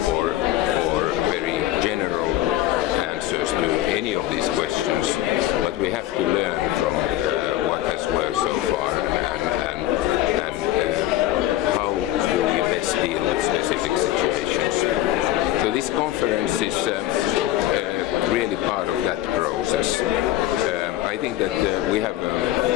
very general answers to any of these questions, but we have to learn from what has worked so far and how we best deal with specific situations. So this conference is really part of that process. I think that we have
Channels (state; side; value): quieter; right; 14.3 dB